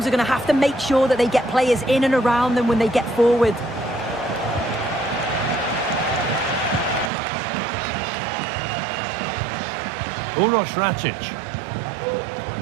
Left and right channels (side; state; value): left; drops out; at 7.1 s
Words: are going to have to make sure that they get players in and around them when they get forward. Uroš Račić.